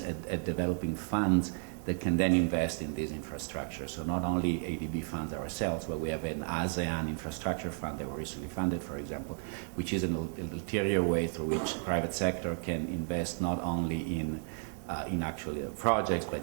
at developing funds that can then invest in this infrastructure. So not only ADB funds ourselves, but we have an ASEAN infrastructure fund that we recently funded, for example, which is an ulterior way through which private sector can invest not only in actually projects, but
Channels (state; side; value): silent; left; 56 dB below the other